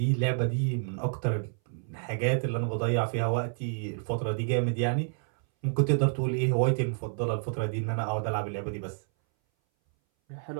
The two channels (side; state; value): left; silent; 59 dB below the other